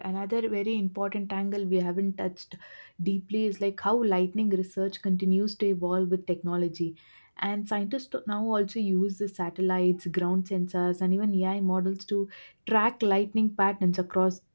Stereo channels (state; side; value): inverted; both; correlation -1.00